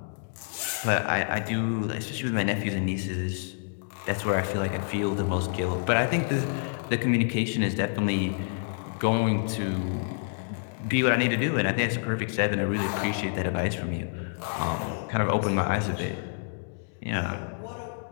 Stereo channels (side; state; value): right; silent; digital silence